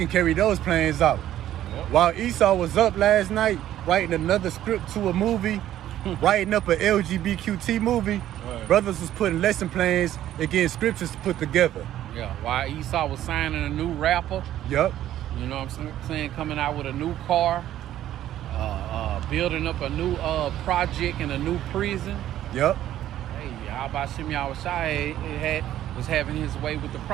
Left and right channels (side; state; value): left; quieter; 12.5 dB